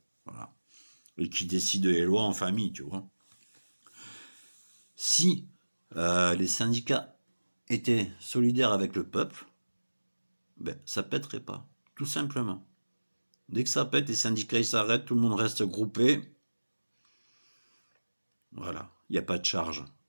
voilà. Et qui décident les lois en famille, tu vois. Si les syndicats étaient solidaires avec le peuple, ben, ça pèterait pas, tout simplement. Dès que ça pète, les syndicats ils s'arrêtent, tout le monde reste groupé. Voilà, il n'y a pas de charge.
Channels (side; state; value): both; inverted; correlation -1.00